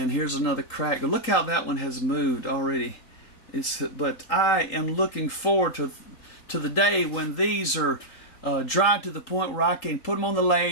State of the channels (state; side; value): late; right; 3.9 ms